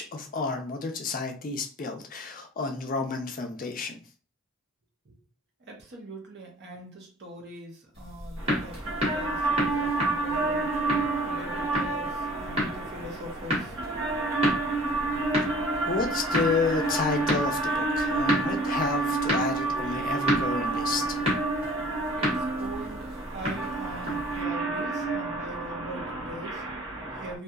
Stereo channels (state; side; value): normal; both; correlation 0.49